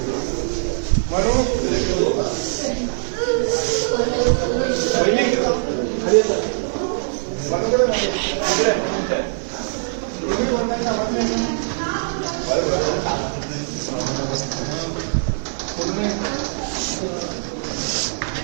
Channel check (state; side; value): silent; left; 64 dB below the other